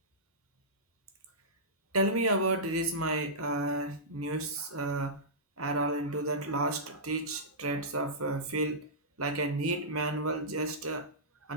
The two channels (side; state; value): both; normal; correlation -0.16